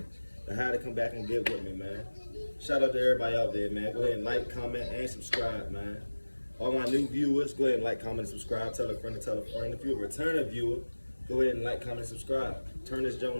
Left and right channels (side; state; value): both; inverted; correlation -1.00